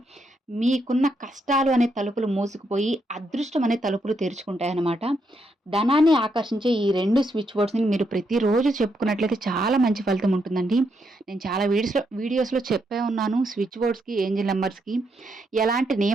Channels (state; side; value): normal; both; correlation 0.79